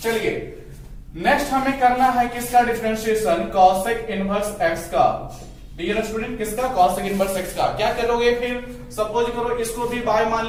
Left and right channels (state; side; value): identical; both; correlation 1.00